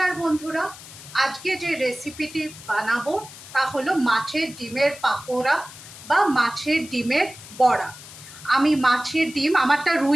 বন্ধুরা, আজকে যে রেসিপিটি বানাবো তা হলো মাছের ডিমের পাকোড়া বা মাছের ডিমের বড়া। আমি মাছের ডিম, আমারটা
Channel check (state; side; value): noise; left; hiss, 16 dB below the sound